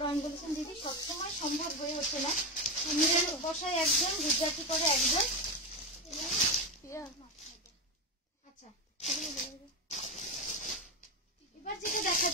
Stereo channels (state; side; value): normal; both; correlation 0.13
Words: আমি বলেছিলাম দিদি সবসময় সম্ভব হয়ে ওঠে না, মিরর বসায় একজন, গুজরাটি করে একজন। আচ্ছা, এবার যেটা